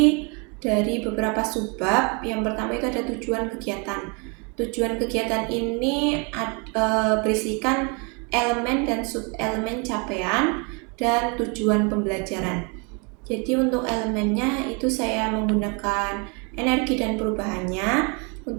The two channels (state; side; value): quieter; left; 33.0 dB